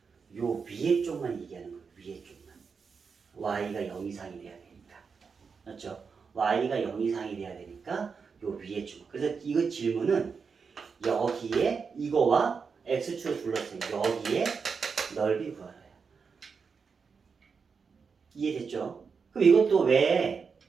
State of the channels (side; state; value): left; quieter; 5.5 dB